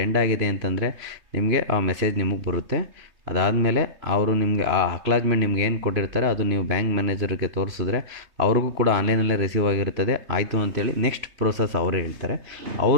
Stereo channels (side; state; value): left; late; 3.2 ms